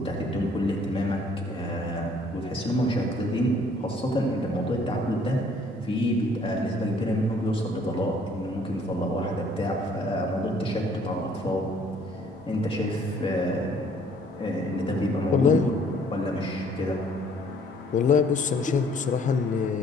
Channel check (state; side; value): normal; both; correlation 0.60